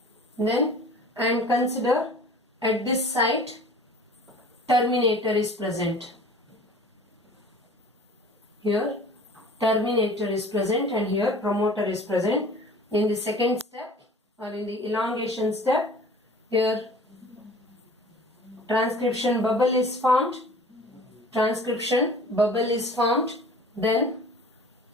Then, and consider at this site terminator is present. Here terminator is present and here promoter is present. In the second step or in the elongation step, here transcription bubble is formed. Transcription bubble is formed. Then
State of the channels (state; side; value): normal; both; correlation 0.46